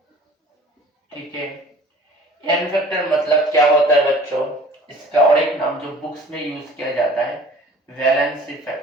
ठीक है, n फैक्टर मतलब क्या होता है बच्चों? इसका और एक नाम जो बुक्स में यूज किया जाता है वैलेंसी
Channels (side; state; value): both; normal; correlation 0.48